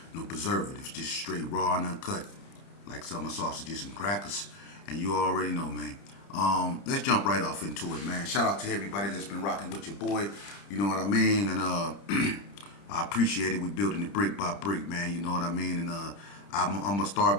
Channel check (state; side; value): late; right; 30 ms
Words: no preservatives. Just straight raw and uncut. Like summer sausages and crackers. And you already know, man. Let's jump right off into it, man. Shout out to everybody that's been rocking with your boy. You know what I mean? And I appreciate it. We building it brick by brick, man. You know what I mean? And I'm going to